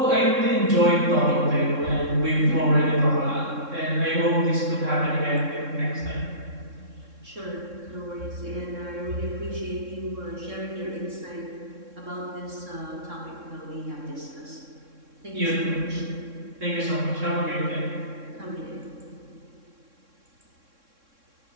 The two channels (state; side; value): late; left; 3.6 ms